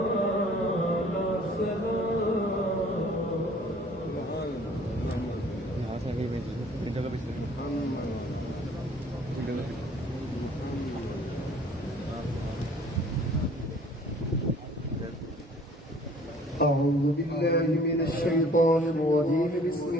أعوذ بالله من الشيطان الرجيم بسم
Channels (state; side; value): normal; both; correlation 0.53